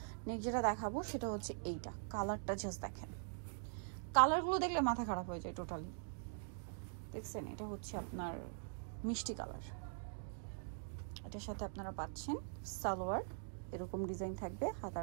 নেক্সট যেটা দেখাবো সেটা হচ্ছে এইটা, কালারটা জাস্ট দেখেন, কালারগুলো দেখলে মাথা খারাপ হয়ে যায় টোটালি। দেখছেন এটা হচ্ছে আপনার মিষ্টি কালার, এটার সাথে আপনারা পাচ্ছেন সালোয়ার, এরকম ডিজাইন থাকবে,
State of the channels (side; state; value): left; silent; digital silence